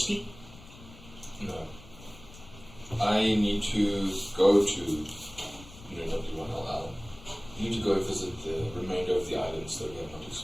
No. I need to go to W1LL. I need to go visit the remainder of the islands that we have not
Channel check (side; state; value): left; noise; rumble, 19 dB below the sound